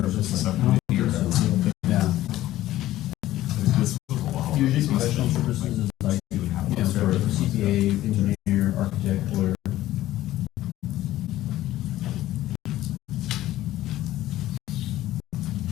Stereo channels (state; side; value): quieter; right; 14.8 dB